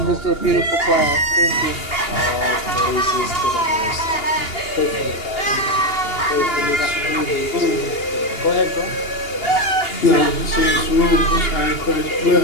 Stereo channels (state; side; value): late; right; 2.8 ms